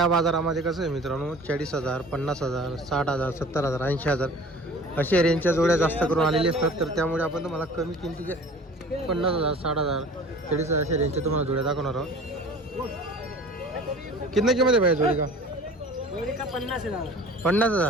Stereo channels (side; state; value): both; normal; correlation 0.44